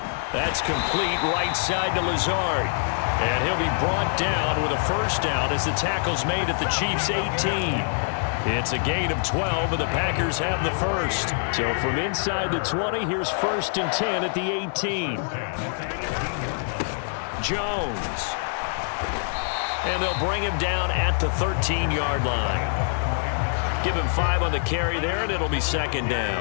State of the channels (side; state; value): right; silent; 62 dB below the other